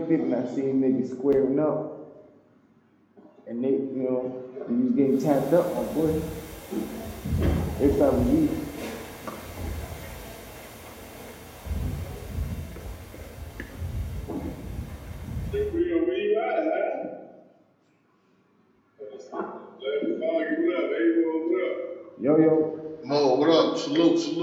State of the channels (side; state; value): both; identical; correlation 1.00